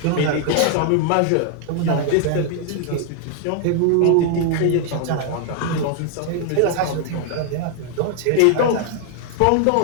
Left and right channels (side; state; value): both; different; correlation 0.00